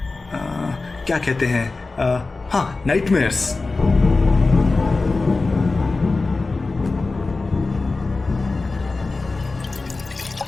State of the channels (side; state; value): right; quieter; 3.6 dB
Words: क्या कहते हैं, हाँ, नाइटमेयर्स।